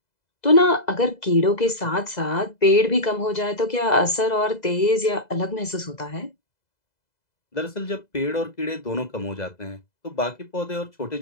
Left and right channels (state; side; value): late; right; 2.0 ms